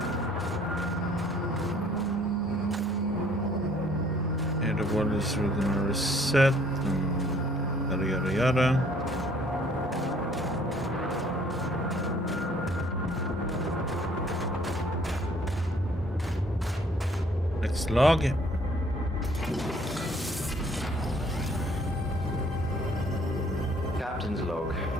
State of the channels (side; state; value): both; normal; correlation 0.60